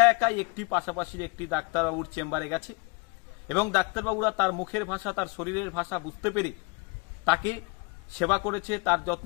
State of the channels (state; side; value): quieter; right; 29.0 dB